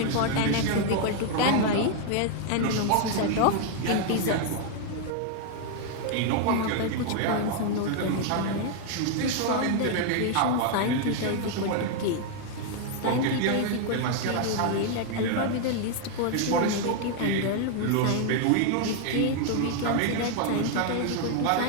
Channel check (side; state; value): both; different; correlation 0.00